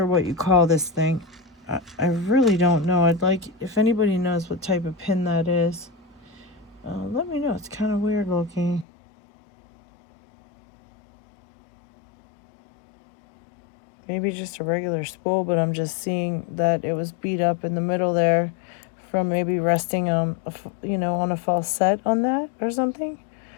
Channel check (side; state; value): right; drops out; at 8.8 s